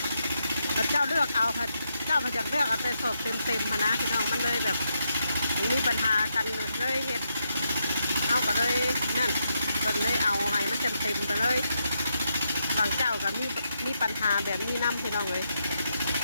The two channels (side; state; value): both; inverted; correlation -0.82